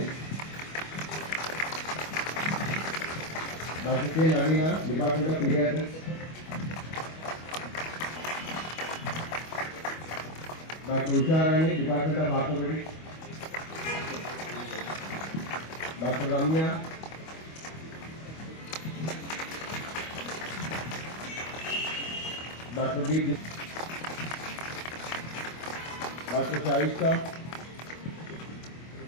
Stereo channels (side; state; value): right; late; 25 ms